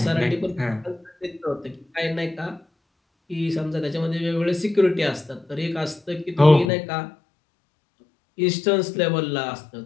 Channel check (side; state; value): right; drops out; at 6.7 s